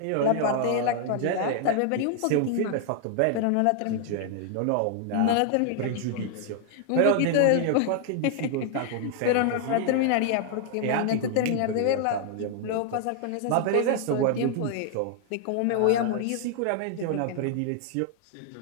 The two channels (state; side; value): different; both; correlation 0.00